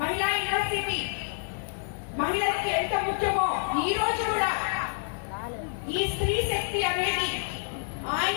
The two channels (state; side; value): silent; right; digital silence